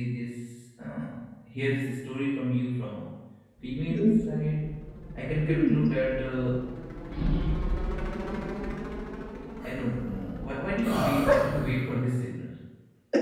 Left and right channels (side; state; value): both; identical; correlation 1.00